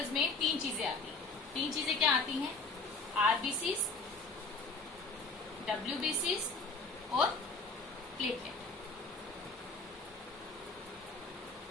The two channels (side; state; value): right; quieter; 3.5 dB